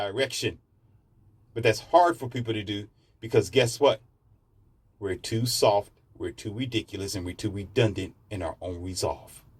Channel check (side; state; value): both; identical; correlation 1.00